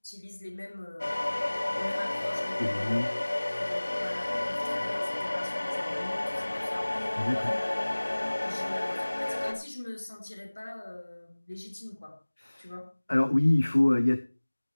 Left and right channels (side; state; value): both; inverted; correlation -1.00